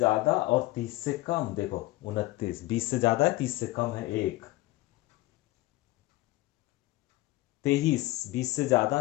और 30 से कम, देखो 29। 20 से ज्यादा है, 30 से कम है 1। 23, 20 से ज्यादा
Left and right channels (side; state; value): right; quieter; 18.7 dB